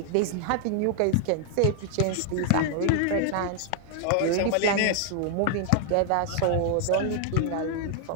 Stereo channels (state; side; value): different; both; correlation 0.00